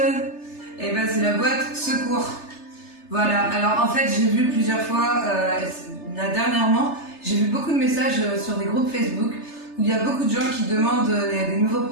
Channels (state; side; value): late; right; 3.3 ms